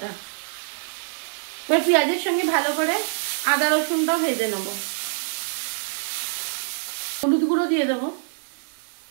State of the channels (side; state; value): left; silent; digital silence